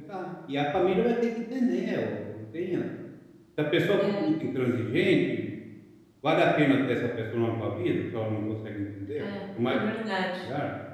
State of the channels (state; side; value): identical; both; correlation 1.00